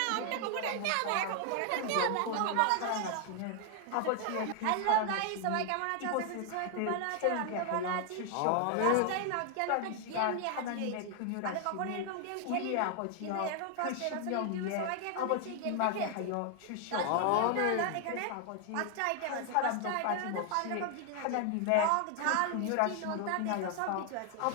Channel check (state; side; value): different; both; correlation 0.00